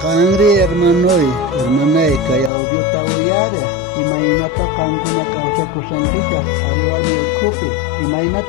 Kangri hermanay kay audio tawuyareh imaynata kankuna kawsakusankichaq qhariwarmi ukhupi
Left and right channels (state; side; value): drops out; right; at 2.5 s